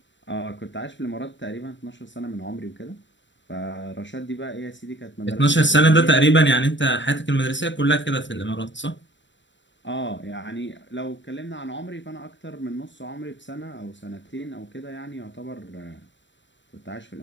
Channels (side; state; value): right; late; 0.53 ms